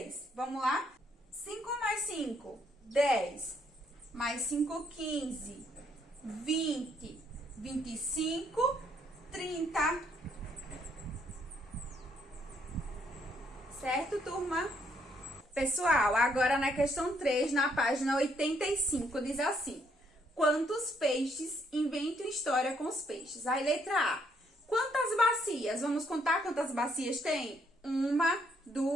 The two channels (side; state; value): both; normal; correlation 0.71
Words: Vamos lá? 5 mais 5, 10. Mais 5, 15. 20, 25, 30. Certo, turma? Pessoal, agora na questão 3, na página 85, diz assim. Quantos peixes? Invente uma história com os peixes. Aí, letra A. Quantas bacias? Vamos contar quantas bacias tem? 1,